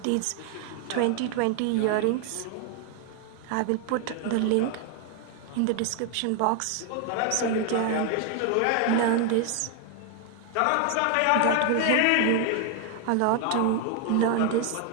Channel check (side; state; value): both; different; correlation 0.01